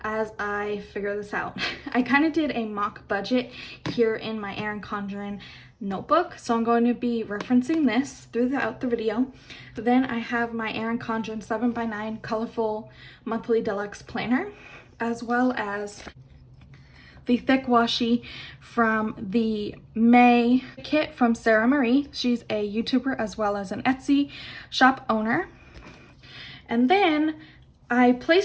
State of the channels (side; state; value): both; identical; correlation 1.00